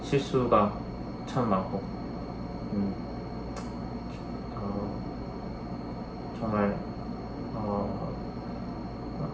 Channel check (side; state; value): both; identical; correlation 1.00